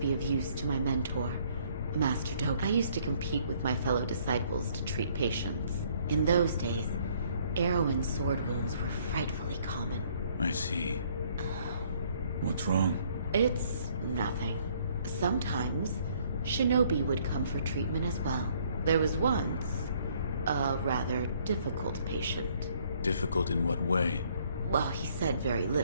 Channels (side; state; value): both; inverted; correlation -0.63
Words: of use to my mentor, Master Doke. I used to compete with my fellow disciples to treat patients. In those days, arrow and sword wounds were frightfully common. I see. What's wrong? It's nothing. Sometimes, shinobi would come for treatment as well. There was once a rather difficult patient. Difficult in what way? Well, he said very